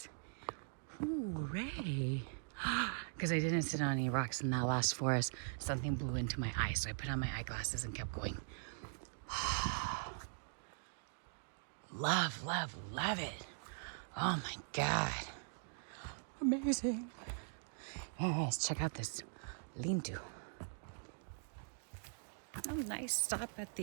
Ooh, Ray. Because I didn't sit on any rocks in that last forest, something blew into my eye. So I put on my eyeglasses and kept going. Love, love, love it. Oh my God. Amazing. All right, let's check out this lean-to. Oh, nice stop at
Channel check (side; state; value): left; silent; digital silence